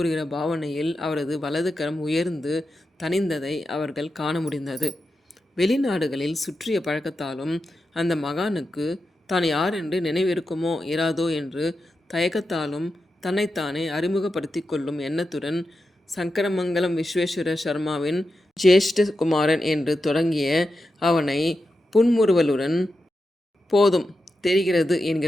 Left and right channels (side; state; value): both; normal; correlation 0.89